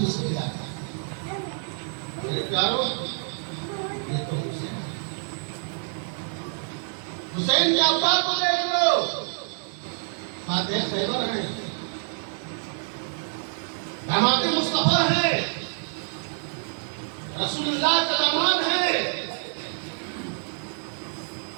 رزق دیتا ہے۔ میرے پیارو، یہ تو حسین کے ابا کو دیکھ لو، فاتح خیبر ہیں، داماد مصطفیٰ ہیں، رسول اللہ کا داماد ہے،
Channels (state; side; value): silent; left; 60 dB below the other